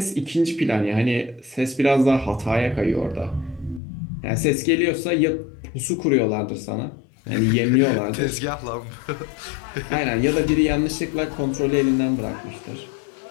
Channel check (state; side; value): drops out; right; at 3.8 s